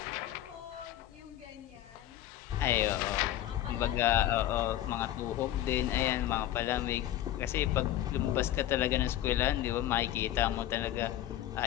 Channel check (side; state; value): right; quieter; 13.0 dB